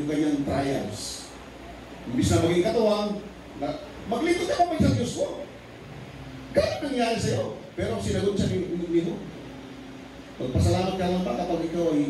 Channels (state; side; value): identical; both; correlation 1.00